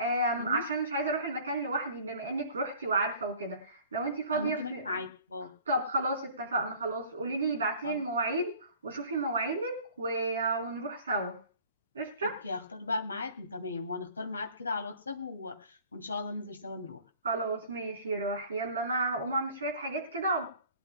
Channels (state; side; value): inverted; both; correlation -0.50